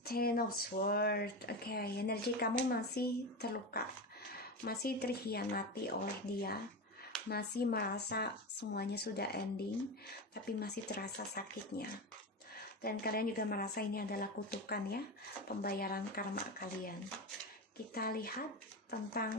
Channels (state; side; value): normal; both; correlation 0.20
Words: Ten of Swords. Oke, energi kamu masih terluka, masih terhianati oleh dia, masih merasa semuanya sudah ending, tapi masih terasa sakitnya. Dan kalian juga merasa ini adalah kutukan ya, pembayaran karma kalian. Kita lihat